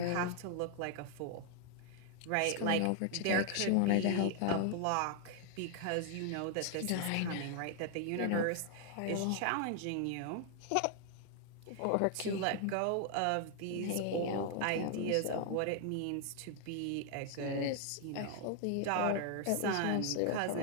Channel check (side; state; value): both; different; correlation 0.00